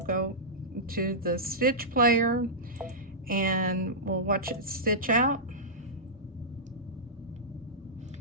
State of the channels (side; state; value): both; normal; correlation -0.14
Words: go to the stitch player and we'll watch it stitch out.